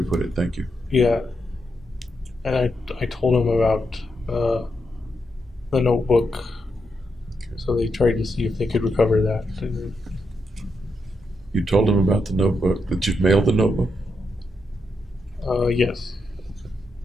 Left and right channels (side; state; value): both; normal; correlation 0.82